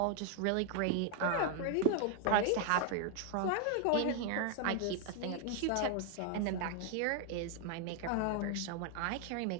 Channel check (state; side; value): different; both; correlation 0.00